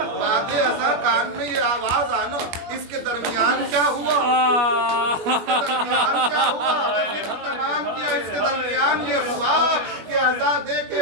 बाद अज़ा कान में ये आवाज आना। इसके दरमियान क्या हुआ? इसके दरमियान क्या हुआ? तमाम किया। इसके दरमियान ये हुआ कि अज़ा दे के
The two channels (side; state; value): left; late; 21 ms